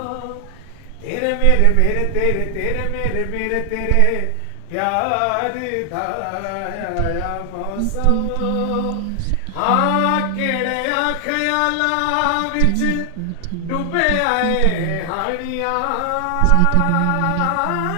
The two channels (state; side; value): different; both; correlation 0.00